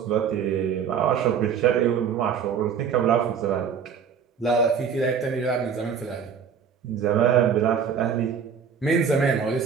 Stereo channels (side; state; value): left; quieter; 7.0 dB